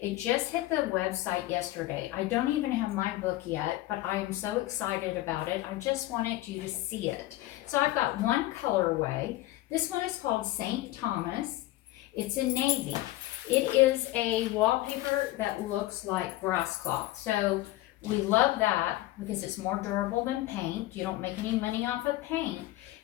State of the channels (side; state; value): right; quieter; 16.7 dB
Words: just hit the website yesterday. I don't even have my book yet, but I am so excited about it. I just wanted you to see it. So I've got one colorway. This one is called St. Thomas. It's in navy. It is a wallpaper that looks like grass cloth. So we love that because it's more durable than paint. You don't make any money off of paint.